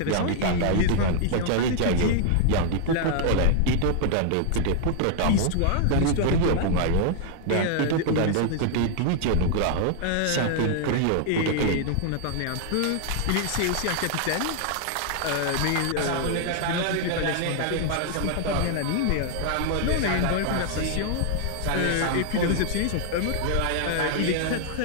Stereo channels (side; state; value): both; different; correlation 0.00